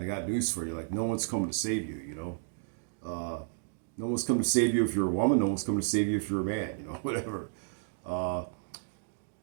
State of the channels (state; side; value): silent; left; digital silence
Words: got news for you: like, no one's coming to save you. No one's coming to save you if you're a woman. No one's coming to save you if you're a man. Whatever. Uh,